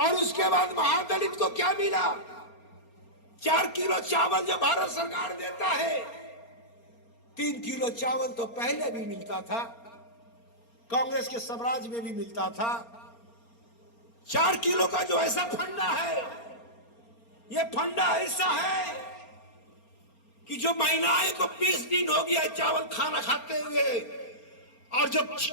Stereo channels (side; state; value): right; late; 4.3 ms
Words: उसके बाद महादलित को क्या मिला, 4 किलो चावल जो भारत सरकार देता है, 3 किलो चावल तो पहले भी मिलता था, कांग्रेस के स्वराज में भी मिलता था। 4 किलो का जो ऐसा फंडा है, ये फंडा ऐसा है कि जो महिलाएं को 20 दिन हो गया चावल खाना खाते हुए, और जब